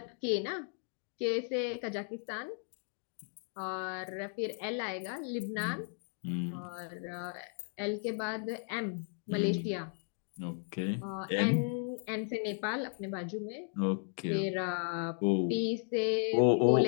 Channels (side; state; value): right; silent; 54 dB below the other